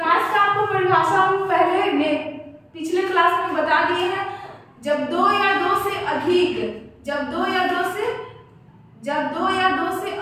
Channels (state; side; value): identical; both; correlation 1.00